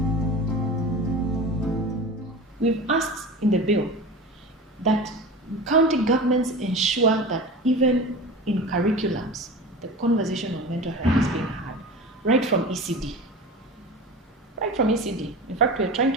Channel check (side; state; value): both; normal; correlation 0.32